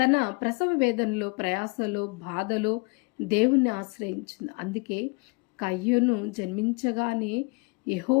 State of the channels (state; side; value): quieter; right; 30.0 dB